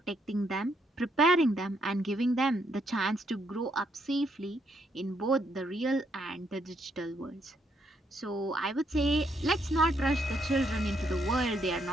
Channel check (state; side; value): normal; both; correlation 0.74